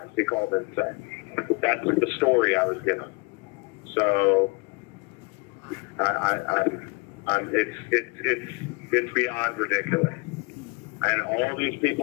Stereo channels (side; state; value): right; quieter; 27.7 dB